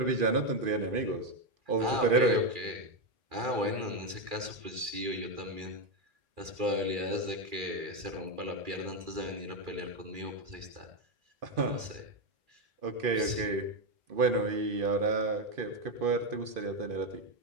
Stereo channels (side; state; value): left; late; 2.4 ms